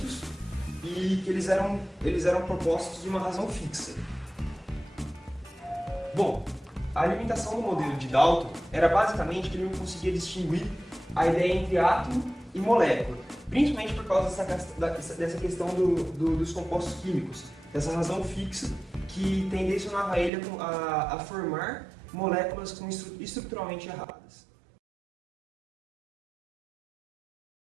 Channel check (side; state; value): left; drops out; at 20.3 s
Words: e que eles eram propostos de uma razão fixa. Bom, a limitação do modelo de Dalton era basicamente que ele não conseguia distinguir a ideia entre átomo e molécula, principalmente por causa dessa questão dos compostos químicos, dessa razão fixa que tendencionava ele a formar moléculas estruturalmente erradas.